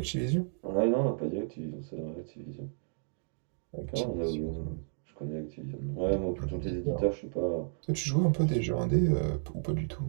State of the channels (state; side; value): silent; left; digital silence